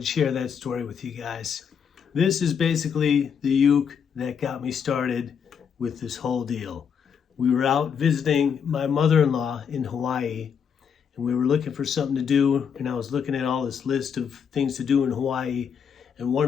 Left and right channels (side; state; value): right; quieter; 7.2 dB